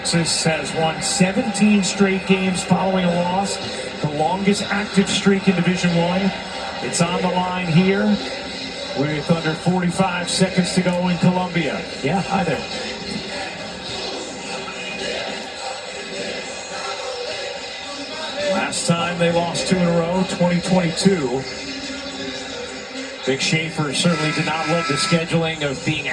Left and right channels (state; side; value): identical; both; correlation 1.00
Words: has won 17 straight games following a loss. The longest active streak in Division I. It's on the line here with under 45 seconds to go in Columbia. Yeah, hi there. Last time they lost 2 in a row, 2022. Big Schaefer certainly did not love the scheduling of being